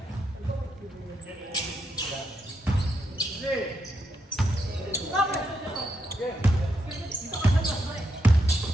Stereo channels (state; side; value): normal; both; correlation 0.81